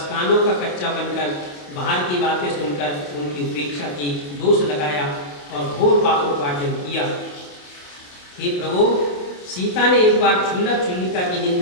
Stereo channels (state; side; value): late; right; 28 ms